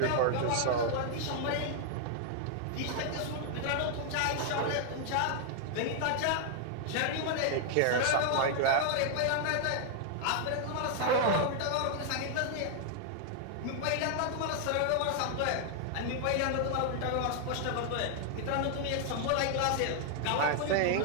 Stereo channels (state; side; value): different; both; correlation 0.00